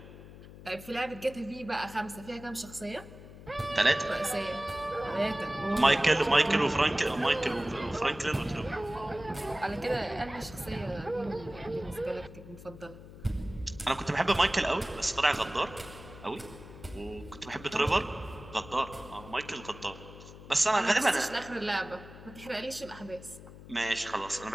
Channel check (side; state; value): left; noise; hum, 16 dB below the sound